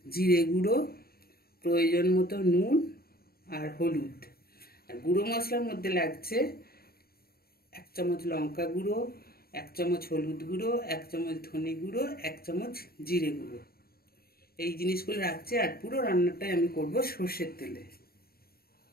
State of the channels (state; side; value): late; right; 0.44 ms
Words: জিরে গুঁড়ো, প্রয়োজন মতো নুন আর হলুদ। আর গুঁড়ো মশলার মধ্যে লাগছে 1 চামচ লঙ্কা গুঁড়ো, 1 চামচ হলুদ গুঁড়ো, 1 চামচ ধনে গুঁড়ো, 1 চামচ জিরে গুঁড়ো। এই জিনিসগুলো রাখছে। আর পুরো রান্নাটাই আমি করব সর্ষের তেলে।